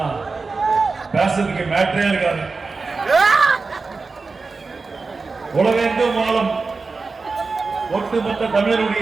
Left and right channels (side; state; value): left; quieter; 4.2 dB